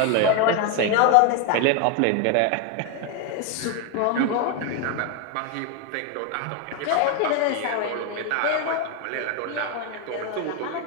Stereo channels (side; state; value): both; different; correlation 0.01